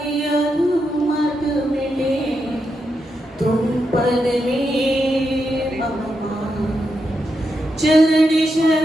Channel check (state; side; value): normal; both; correlation 0.84